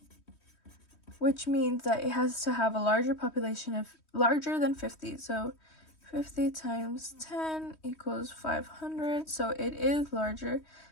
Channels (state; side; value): late; right; 3.2 ms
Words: which means that it has to have a larger population of larger than 50. So 50 times 10 equals 500. So it is larger